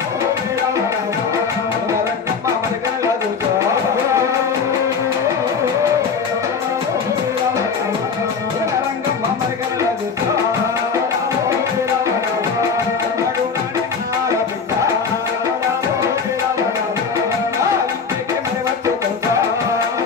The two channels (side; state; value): right; quieter; 5.6 dB